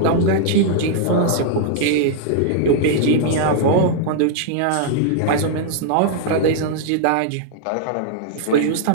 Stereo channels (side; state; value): both; different; correlation -0.01